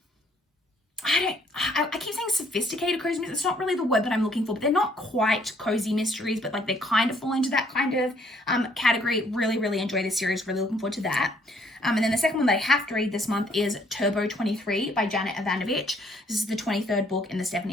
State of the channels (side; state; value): both; normal; correlation 0.65